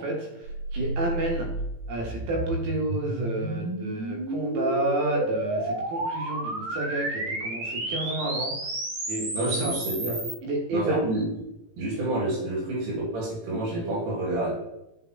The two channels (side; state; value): left; late; 18 ms